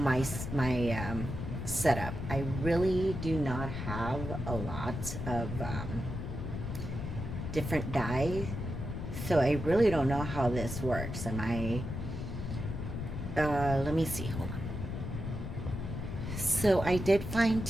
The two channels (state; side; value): noise; left; rumble, 5 dB below the sound